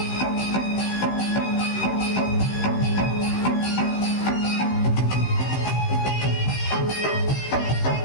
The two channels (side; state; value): right; late; 16 ms